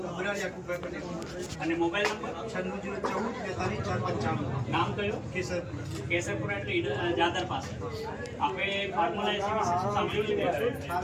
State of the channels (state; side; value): identical; both; correlation 1.00